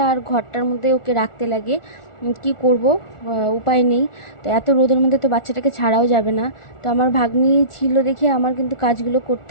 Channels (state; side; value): late; right; 1.4 ms